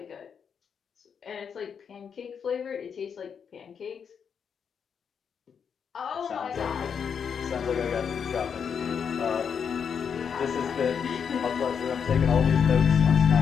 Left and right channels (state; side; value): quieter; right; 7.0 dB